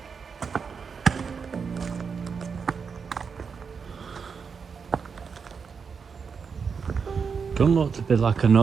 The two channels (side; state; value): left; quieter; 5.9 dB